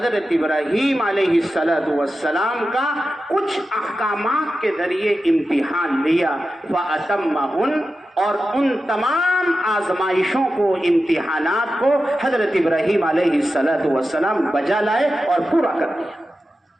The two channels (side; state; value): both; normal; correlation 0.92